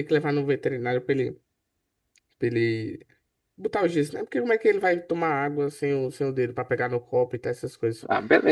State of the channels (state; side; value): identical; both; correlation 1.00